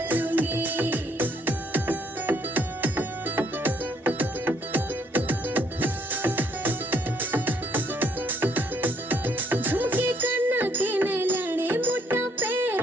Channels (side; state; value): both; normal; correlation 0.68